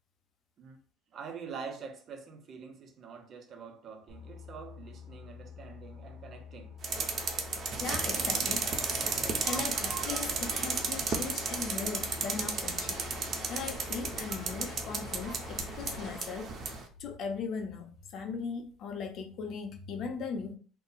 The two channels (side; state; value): both; normal; correlation 0.57